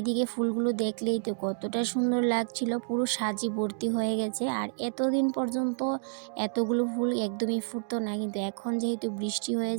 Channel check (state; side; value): silent; left; digital silence